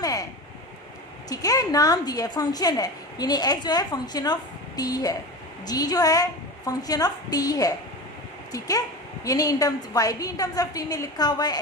है। ठीक है, नाम दिया है, फंक्शन है, यानी x जो है फंक्शन ऑफ t है, g जो है फंक्शन ऑफ t है। ठीक है, यानी इन टर्म्स y भी इन टर्म्स ऑफ t में लिखा हुआ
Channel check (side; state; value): both; normal; correlation 0.28